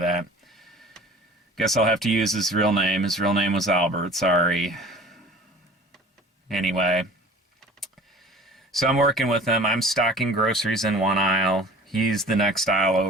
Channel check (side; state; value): both; normal; correlation 0.44